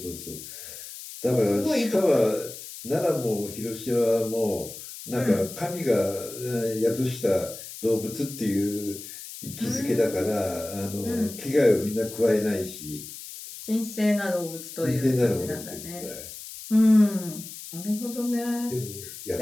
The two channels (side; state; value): left; noise; hiss, 12 dB below the sound